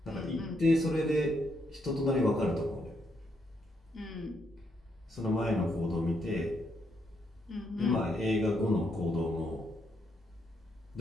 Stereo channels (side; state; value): both; normal; correlation 0.77